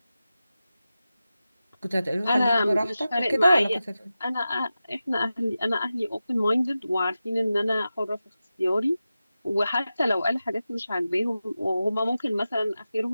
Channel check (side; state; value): both; inverted; correlation -0.93